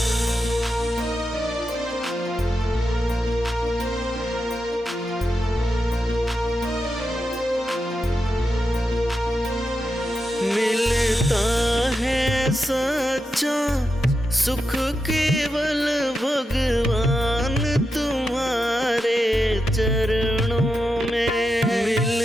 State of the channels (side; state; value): both; normal; correlation 0.88